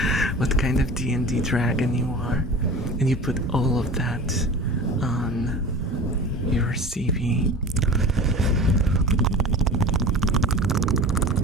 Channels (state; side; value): normal; both; correlation 0.36